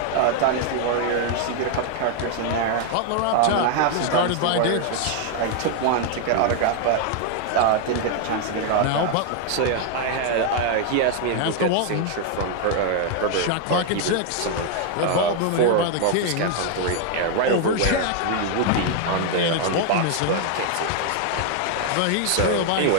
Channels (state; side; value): different; both; correlation 0.00